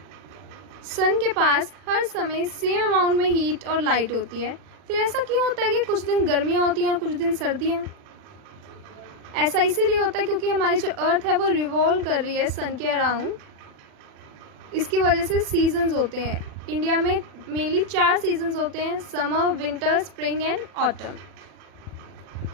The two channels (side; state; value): left; late; 40 ms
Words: सन के पास हर समय सेम अमाउंट में हीट और लाइट होती है. फिर ऐसा क्यों होता है कि कुछ दिन गर्मियाँ होती हैं और कुछ दिन सर्दियाँ? ऐसा इसीलिए होता है क्योंकि हमारी जो अर्थ है वो रिवॉल्व कर रही है सन के अराउंड. इसकी वजह से सीजन्स होते हैं. इंडिया में मेनली 4 सीजन्स होते हैं: summer, winter, spring and autumn.